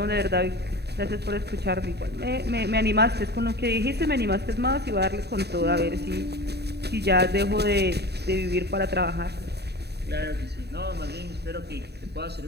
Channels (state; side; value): late; left; 0.48 ms